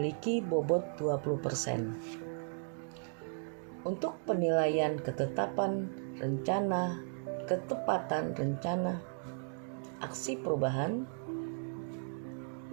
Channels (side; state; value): left; silent; 54 dB below the other